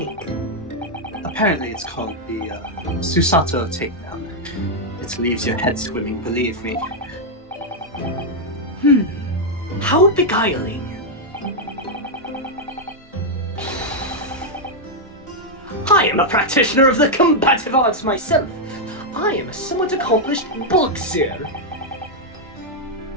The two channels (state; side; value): normal; both; correlation -0.02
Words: Apparently it's called the Susato takedown. It leaves your head swimming, believe me. How beguiling. I am a practitioner of the combative arts myself. I am a somewhat accomplished boxer.